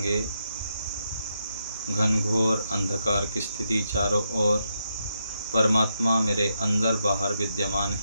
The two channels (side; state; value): both; inverted; correlation -0.82